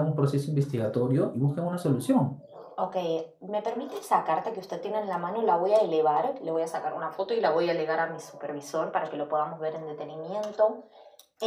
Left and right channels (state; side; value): identical; both; correlation 1.00